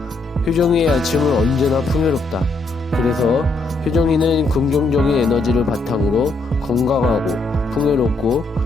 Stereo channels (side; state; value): right; quieter; 3.3 dB